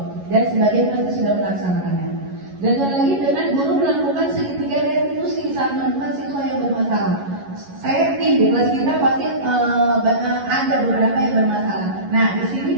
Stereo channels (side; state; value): left; late; 11 ms